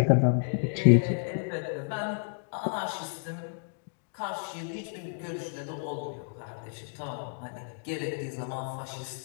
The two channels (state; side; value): silent; right; digital silence